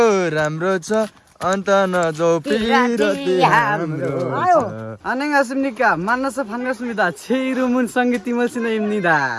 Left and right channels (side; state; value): both; identical; correlation 1.00